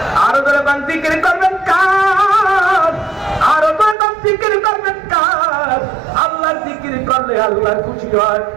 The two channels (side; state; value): left; drops out; at 4.0 s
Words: আরো ধরে কোন জিকির করবেন কার? আরো ধরে কোন জিকির করবেন কার? আল্লাহর জিকির করলে আল্লাহ খুশি হয়,